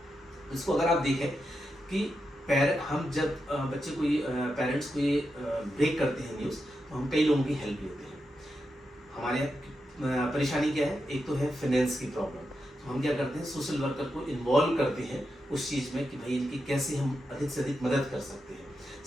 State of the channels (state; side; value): normal; both; correlation 0.87